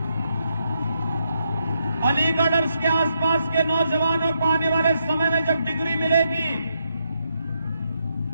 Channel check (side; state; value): both; inverted; correlation -0.79